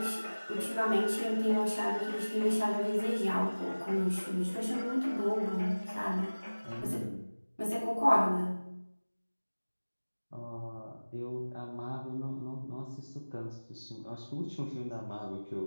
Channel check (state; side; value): inverted; both; correlation -1.00